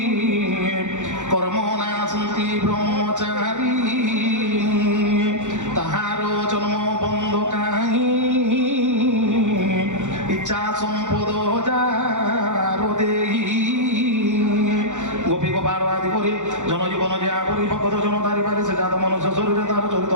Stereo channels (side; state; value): left; late; 0.85 ms